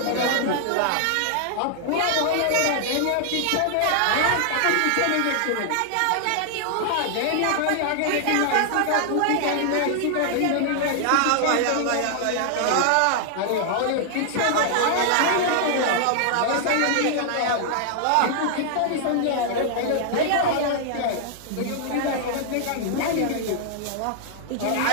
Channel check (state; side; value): different; both; correlation 0.00